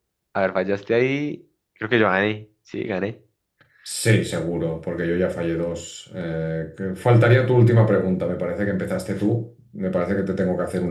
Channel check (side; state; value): both; identical; correlation 1.00